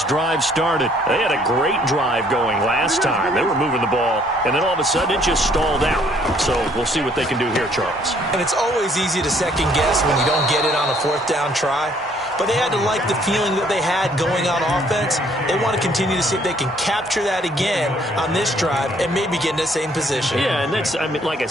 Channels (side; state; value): both; normal; correlation 0.63